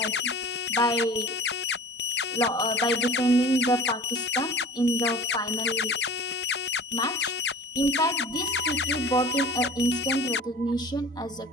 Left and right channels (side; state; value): both; normal; correlation 0.40